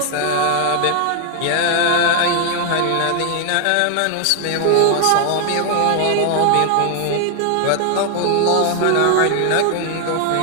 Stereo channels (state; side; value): different; both; correlation 0.00